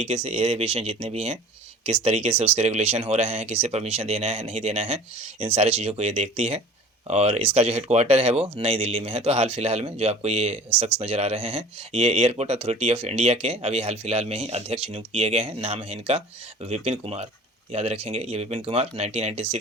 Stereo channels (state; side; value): normal; both; correlation 0.44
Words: से एयर एविएशन जितने भी हैं किस तरीके से उसके रेगुलेशन हो रहे हैं, किसे परमिशन देना है नहीं देना है, इन सारी चीज़ों को ये देखती है। और इसका जो हेडक्वार्टर है वो नई दिल्ली में है। तो हाल फिलहाल में जो आपको ये शख्स नज़र आ रहे हैं ये एयरपोर्ट अथॉरिटी ऑफ इंडिया के अभी हाल फिलहाल में ही अध्यक्ष नियुक्त किए गए हैं। नाम है इनका विपिन कुमार, याद रखेंगे। ये विपिन कुमार